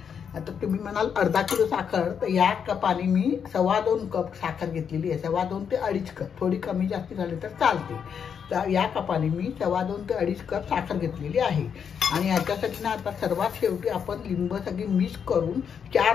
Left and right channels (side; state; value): right; quieter; 7.3 dB